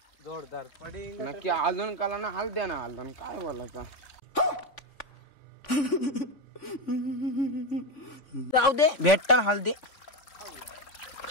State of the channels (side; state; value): right; late; 3.5 ms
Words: जोरदार पडिंग. नक्की हलदून काला ना हळद्या ना हलदून काय बोलायचा. जाऊ दे भेटतात हळदे